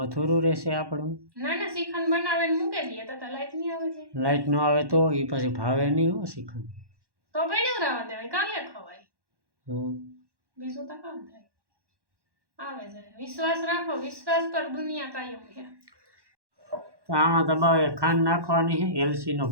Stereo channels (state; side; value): late; left; 1.1 ms